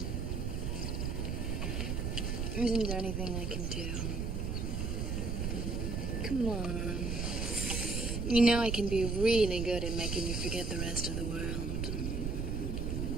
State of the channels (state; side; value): noise; right; rumble, 1 dB below the sound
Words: Isn't there anything I can do? Come on. You know I can be really good at making you forget the rest of the world.